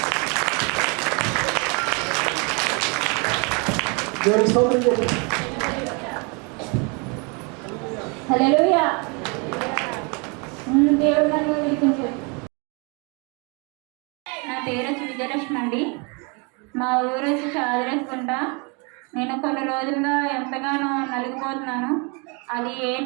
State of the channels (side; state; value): left; quieter; 32.4 dB